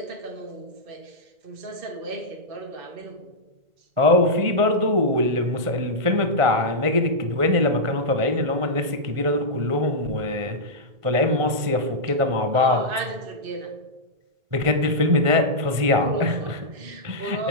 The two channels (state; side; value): late; left; 1.5 ms